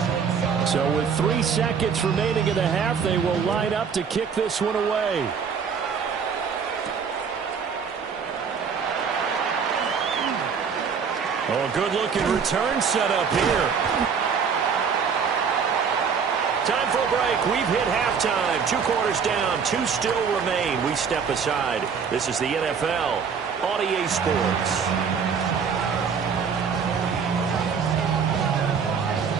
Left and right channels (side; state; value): left; quieter; 6.3 dB